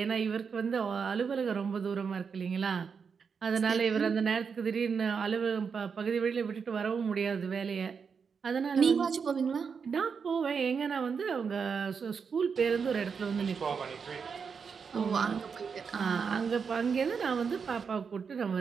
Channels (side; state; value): left; quieter; 6.0 dB